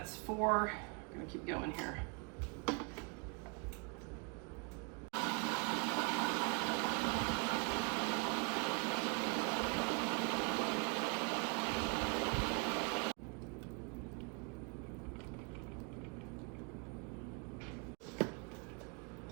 4. We're gonna keep going here.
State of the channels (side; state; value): left; quieter; 34.5 dB